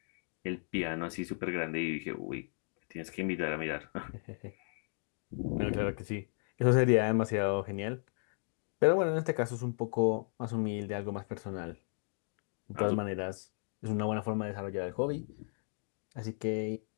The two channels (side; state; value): right; silent; 54 dB below the other